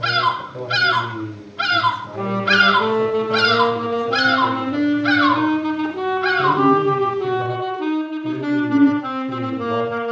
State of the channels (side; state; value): both; identical; correlation 1.00